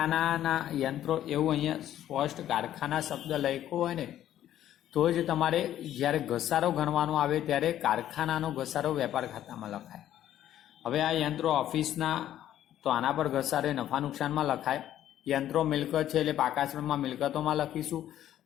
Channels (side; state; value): right; quieter; 11.9 dB